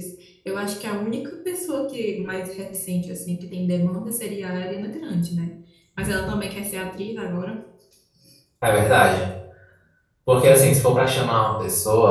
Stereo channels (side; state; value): both; identical; correlation 1.00